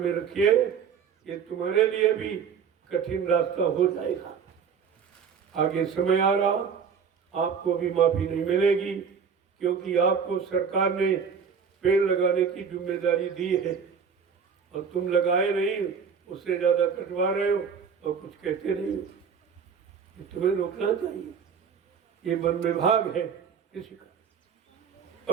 रखिए, ये तुम्हारे लिए भी कठिन रास्ता हो जाएगा। आगे समय आ रहा, आपको भी माफी नहीं मिलेगी, क्योंकि आपको सरकार ने पेड़ लगाने की जिम्मेदारी दी है और तुम लगाए नहीं, उससे ज्यादा कटवा रहे हो और कुछ कहते नहीं हो। ये तुम्हें रोकना चाहिए। ये वन विभाग है किसी का,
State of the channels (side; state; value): left; quieter; 6.6 dB